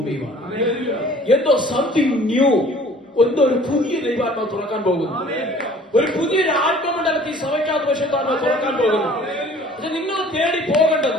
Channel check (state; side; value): normal; both; correlation 0.51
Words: എന്തോ സംതിങ് ന്യൂ, എന്തോ ഒരു പുതിയ ദൈവാത്മാവ് തുറക്കാൻ പോകുന്നു. ഒരു പുതിയൊരു ആത്മമണ്ഡലത്തിൽ സഭയ്ക്കകത്ത് പരിശുദ്ധാത്മാവ് തുറക്കാൻ പോകുന്നു. പക്ഷെ നിങ്ങൾ തേടി